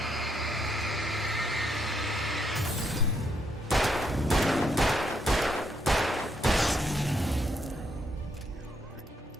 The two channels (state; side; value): normal; both; correlation 0.76